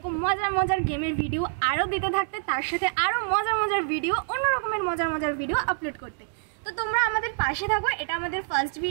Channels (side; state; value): left; silent; digital silence